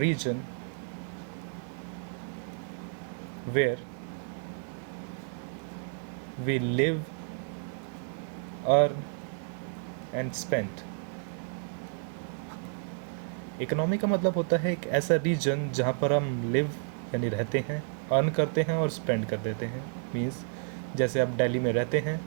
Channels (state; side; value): silent; left; 57 dB below the other